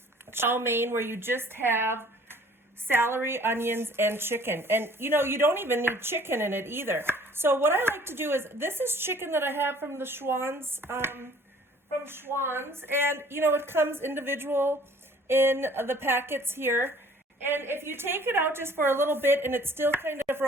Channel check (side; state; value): both; normal; correlation 0.53